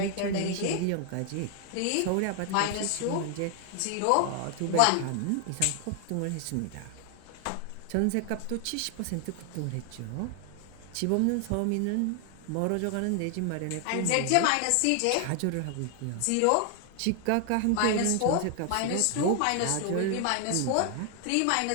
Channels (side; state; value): both; different; correlation 0.00